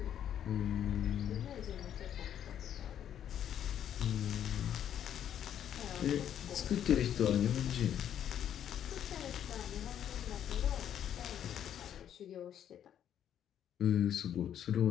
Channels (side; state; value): right; quieter; 9.9 dB